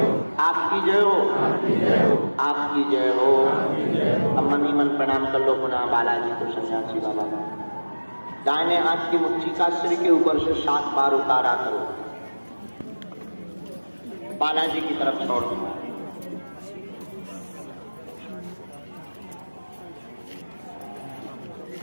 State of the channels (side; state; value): both; inverted; correlation -1.00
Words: आपकी जय हो। अब मन ही मन प्रणाम कर लो पुनः बालाजी को, सन्यासी बाबा का। दाहिने हाथ की मुट्ठी का सिर के ऊपर से 7 बार उतारा करो, बालाजी की तरफ छोड़ दो।